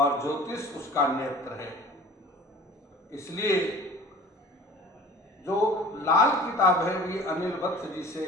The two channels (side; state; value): both; normal; correlation 0.45